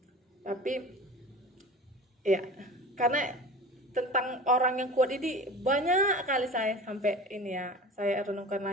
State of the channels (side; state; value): both; normal; correlation 0.36